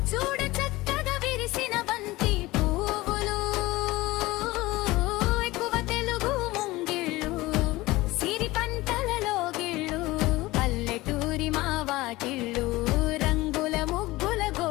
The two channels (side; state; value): right; quieter; 19.5 dB